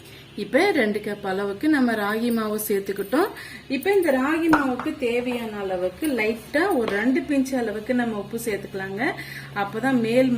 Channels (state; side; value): identical; both; correlation 1.00